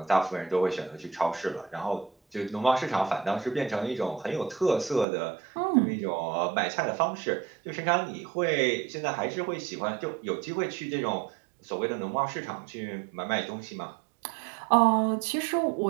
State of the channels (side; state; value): left; drops out; at 5.1 s